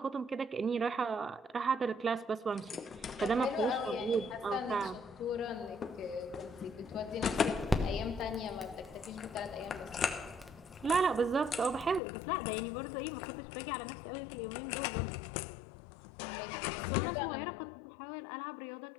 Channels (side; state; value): right; drops out; at 12.0 s